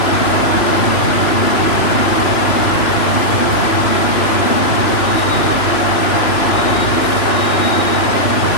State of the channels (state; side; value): late; right; 2.9 ms